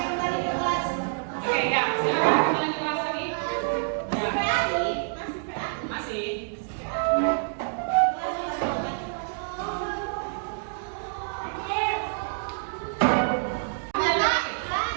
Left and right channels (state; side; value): silent; left; digital silence